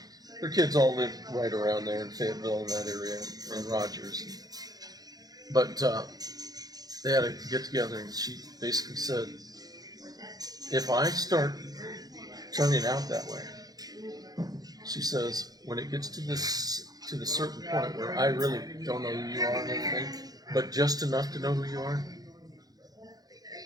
their kids all lived right around there in Fayetteville in that area, and Rogers. But they had a get together, and she basically said, if I start turning out that way, she says, when it gets to the certain point where I really don't know who you are and everything, but just enough to know who you are,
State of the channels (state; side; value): late; left; 0.19 ms